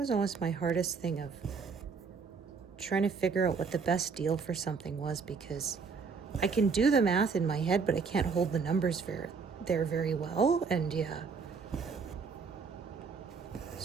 almost my hardest thing of trying to figure out what the best deal for something was, because I can do the math in my head, but I can't hold the numbers there very well. And yeah.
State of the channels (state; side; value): quieter; left; 5.3 dB